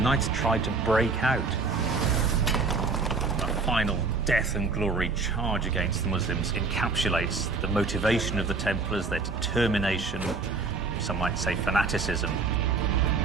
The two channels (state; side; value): quieter; left; 4.2 dB